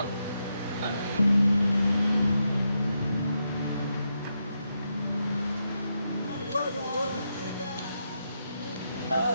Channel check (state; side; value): inverted; both; correlation -0.83